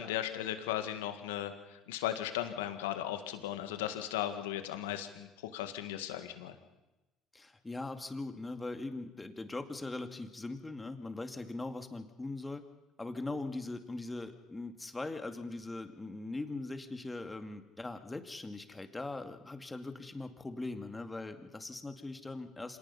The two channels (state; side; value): quieter; right; 5.7 dB